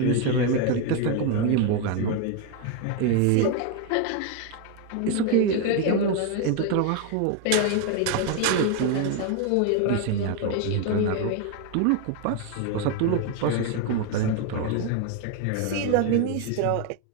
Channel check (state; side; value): different; both; correlation 0.01